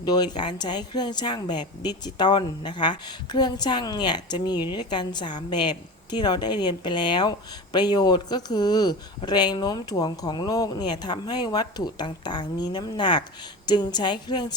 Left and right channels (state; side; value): normal; both; correlation 0.28